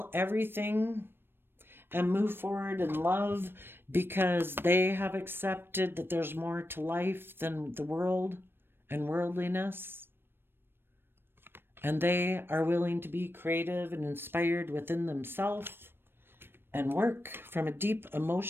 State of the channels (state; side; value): late; left; 0.10 ms